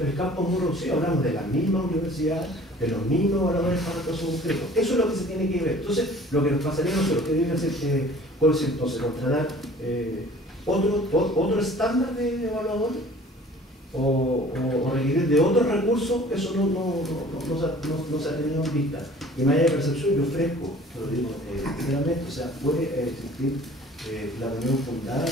campo es muy reducido, hablamos de la misma universidad, de los mismos evaluadores para el caso concreto. Eso es lo que se tiene que ver. Entonces, lo que nos pasaría a nosotros, que debe hacer, ¿cuál es entonces? Contratar otro estándar de evaluadores o requerir de otros recursos, eso no se ha tenido en vista. Y más allá de percepción, yo ofrezco, lo digo sinceramente, o sea, puede existir la reunión fundada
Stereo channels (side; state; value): both; normal; correlation 0.49